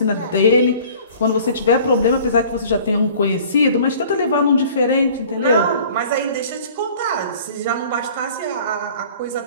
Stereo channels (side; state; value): both; inverted; correlation -0.49